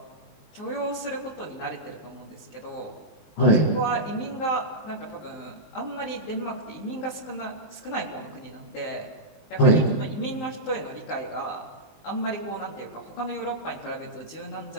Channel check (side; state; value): right; late; 20 ms